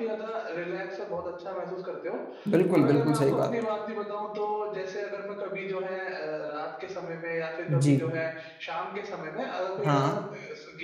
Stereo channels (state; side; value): identical; both; correlation 1.00